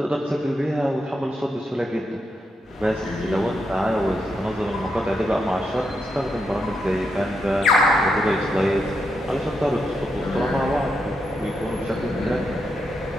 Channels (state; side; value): normal; both; correlation 0.83